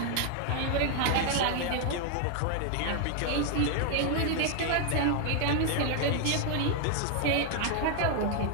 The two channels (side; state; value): both; different; correlation 0.00